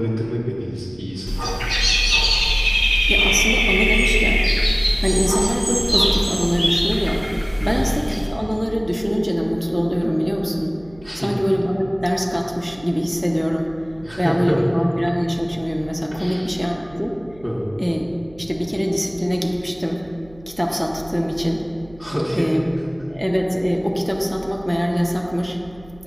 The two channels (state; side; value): noise; right; hum, 23 dB below the sound